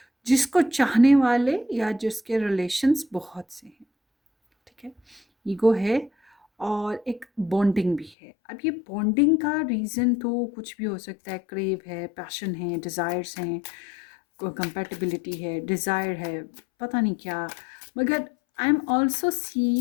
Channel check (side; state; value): right; drops out; at 8.2 s